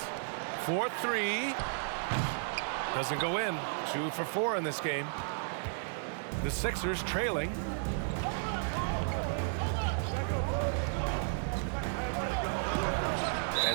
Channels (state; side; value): silent; left; digital silence